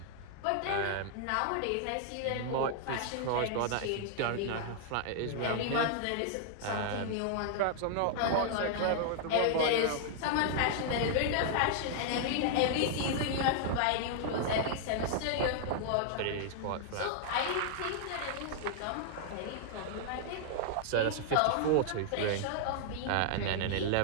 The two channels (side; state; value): both; different; correlation -0.01